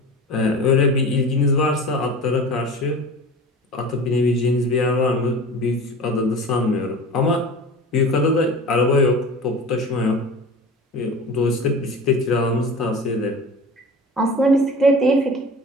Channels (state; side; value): normal; both; correlation 0.36